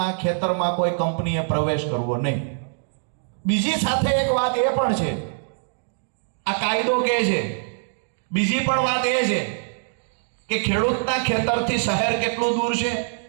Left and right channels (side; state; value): left; silent; digital silence